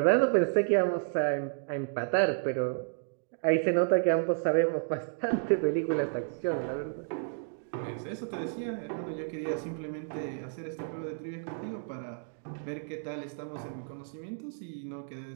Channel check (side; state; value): left; silent; digital silence